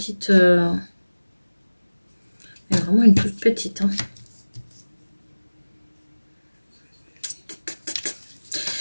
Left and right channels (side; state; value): both; inverted; correlation -1.00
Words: mais vraiment une toute petite. Hein.